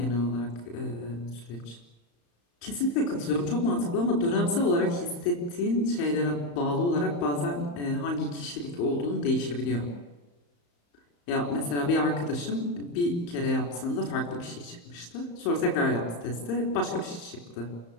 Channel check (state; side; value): late; right; 35 ms